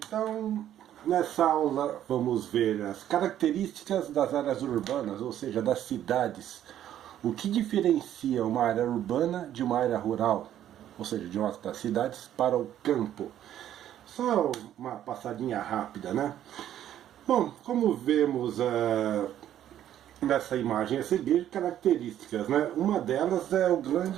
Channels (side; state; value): left; quieter; 11.3 dB